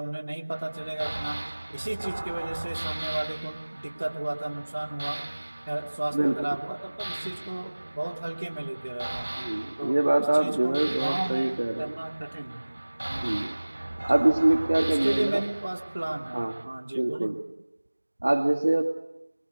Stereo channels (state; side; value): inverted; both; correlation -1.00